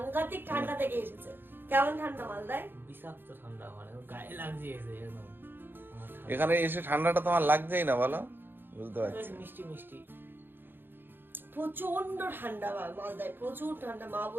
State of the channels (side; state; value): left; late; 0.099 ms